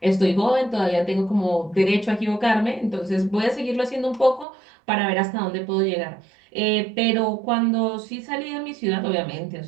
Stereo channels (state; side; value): drops out; left; at 4.5 s